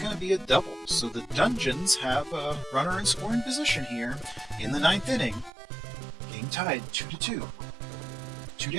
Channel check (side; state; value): left; drops out; at 5.5 s